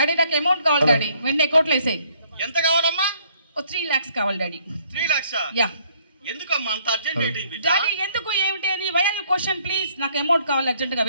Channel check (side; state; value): both; inverted; correlation -0.64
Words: నాకు అమౌంట్ కావాలి డాడీ, వెంటనే అకౌంట్లో వేసేయి. ఎంత కావాలమ్మా? 3 lakhs కావాలి డాడీ. 3 lakhs? యా. ఎందుకమ్మా అంత అర్జెంట్ ఏంటి? డాడీ ఎందుకు ఏమిటి అని why are you question please. నాకు అమౌంట్ కావాలి అర్జెంటుగా